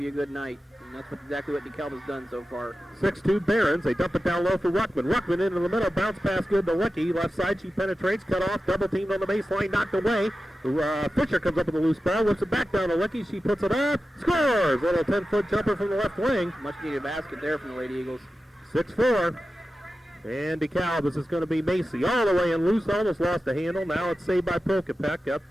be a good night. And that's exactly what DeKalb has done so far. 6'2 Barons. They dump it down low for Ruckman. Ruckman into the middle. Bounce pass good to Licky. Left side, she penetrates. Cut off. Double teamed on the baseline. Knocked away. Fisher comes up with a loose ball. Whips it back down to Licky. She puts it up. Scores! Little 10-foot jumper from the left wing. Much needed basket there from the Lady Eagles. 6-4. And DeKalb, this is going to be Macy. All the way in loose. Almost lost the handle. Now it's saved by Prokopek. Up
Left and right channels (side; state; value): both; normal; correlation 0.93